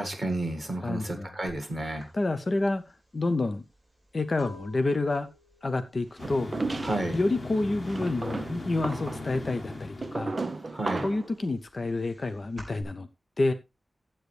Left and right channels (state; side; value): normal; both; correlation 0.94